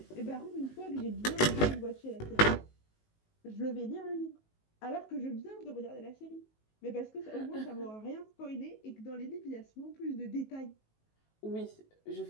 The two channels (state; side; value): late; right; 19 ms